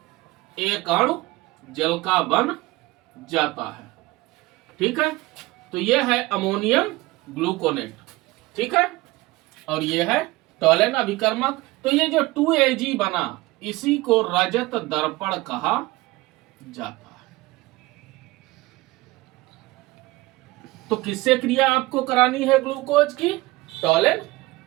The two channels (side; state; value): left; quieter; 20.2 dB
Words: एक अणु जल का बन जाता है, ठीक है। तो ये है अमोनियम ग्लूकोनेट, ठीक है। और ये है टॉलेन अभिकर्मक। तो ये जो 2Ag बना, इसी को रजत दर्पण कहा जाता है। तो किससे क्रिया आपको करानी है ग्लूकोज की? टॉलेन